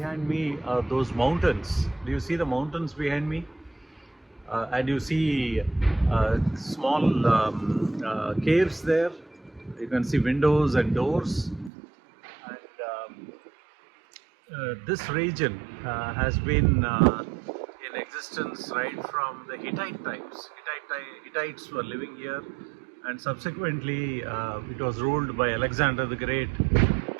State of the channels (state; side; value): drops out; left; at 11.7 s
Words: me those mountains. Do you see the mountains behind me? And you see small caves there. You can see windows and doors. And this region has been in existence right from the Hittite times. Hittites were living here, and subsequently it was ruled by Alexander the Great.